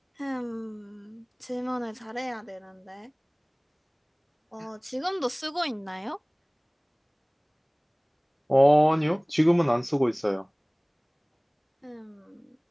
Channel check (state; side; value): identical; both; correlation 1.00